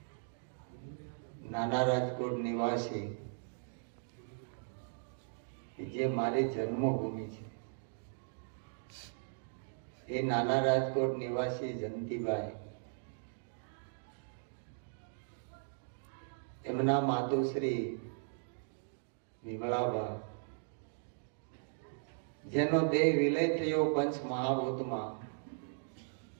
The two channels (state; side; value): silent; left; digital silence